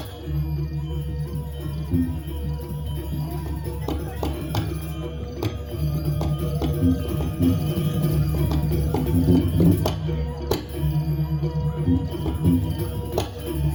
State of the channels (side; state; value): both; identical; correlation 1.00